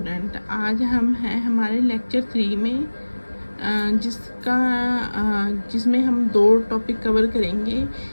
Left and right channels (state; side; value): inverted; both; correlation -1.00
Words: आज हम हैं हमारे लेक्चर 3 में जिसमें हम दो टॉपिक कवर करेंगे।